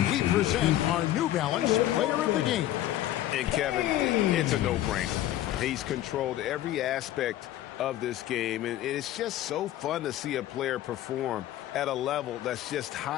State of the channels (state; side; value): quieter; right; 13.5 dB